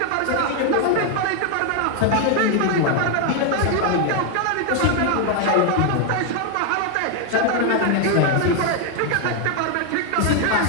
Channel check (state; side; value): different; both; correlation 0.01